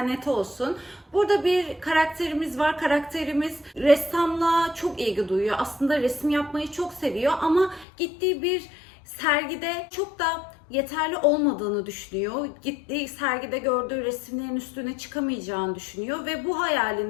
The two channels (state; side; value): drops out; right; at 7.9 s